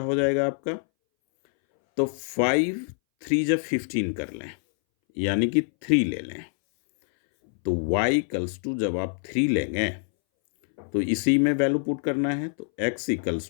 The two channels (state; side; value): silent; right; 61 dB below the other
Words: जाएगा आपका, तो 5 3 जब 15 कर लें यानी कि 3 ले लें। तो y इक्वल्स टू जब आप 3 लेंगे तो इसी में वैल्यू पुट करना है। तो x